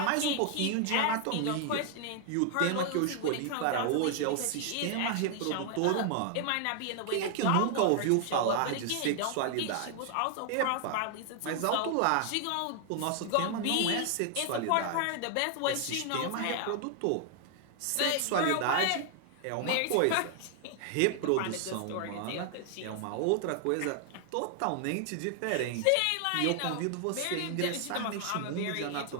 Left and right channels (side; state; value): both; different; correlation 0.00